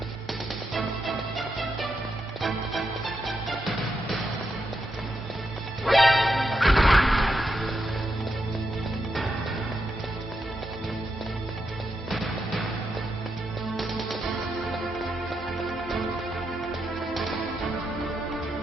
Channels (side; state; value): both; normal; correlation 0.83